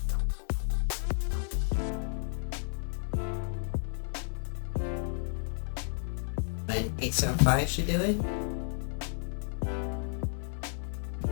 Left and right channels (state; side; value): silent; right; 56 dB below the other